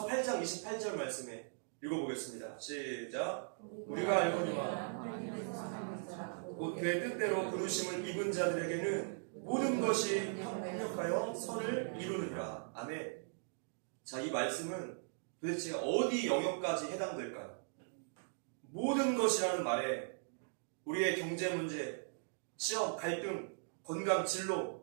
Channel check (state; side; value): silent; left; digital silence